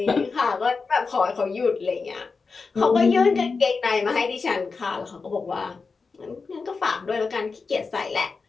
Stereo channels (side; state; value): right; quieter; 4.6 dB